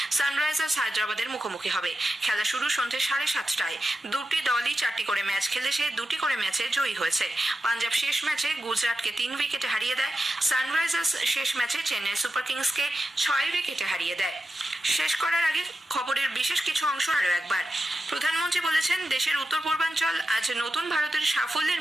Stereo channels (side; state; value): both; normal; correlation 0.91